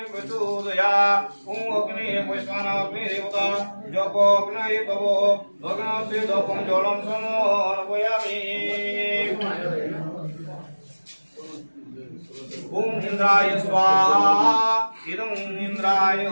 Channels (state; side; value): inverted; both; correlation -1.00